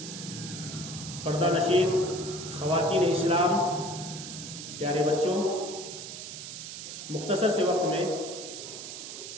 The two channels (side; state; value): right; noise; hiss, 9 dB below the sound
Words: پردہ نشین خواتین اسلام، پیارے بچوں، مختصر سے وقت میں